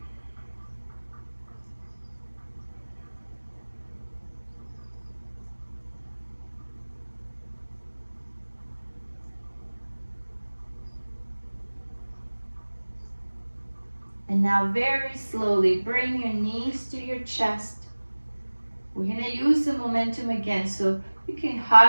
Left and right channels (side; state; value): both; inverted; correlation -1.00